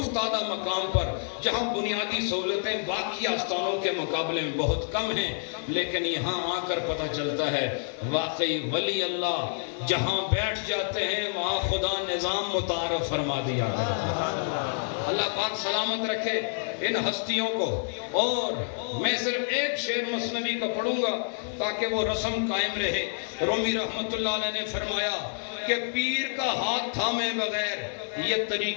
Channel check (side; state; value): right; silent; digital silence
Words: مقام پر جہاں بنیادی سہولتیں باقی آستانوں کے مقابلے میں بہت کم ہیں، لیکن یہاں آ کر پتہ چلتا ہے واقعی ولی اللہ جہاں بیٹھ جاتے ہیں وہاں خدا نظام متعارف فرما دیا کرتا ہے. اللہ پاک سلامت رکھے ان ہستیوں کو. اور میں صرف ایک شعر مثنوی کا پڑھوں گا تاکہ وہ رسم قائم رہے. رومی رحمت اللہ علیہ نے فرمایا کہ پیر کا ہاتھ تھامے بغیر یہ